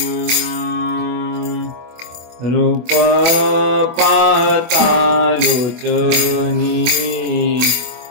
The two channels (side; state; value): left; late; 25 ms